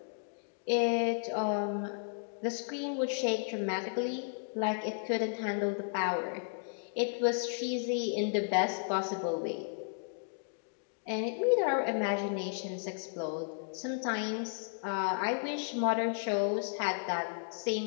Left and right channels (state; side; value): silent; right; digital silence